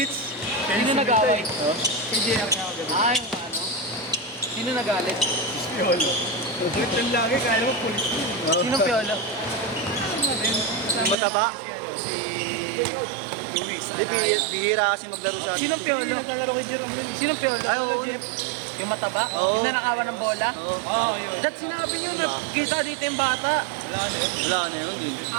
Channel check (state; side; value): drops out; left; at 11.2 s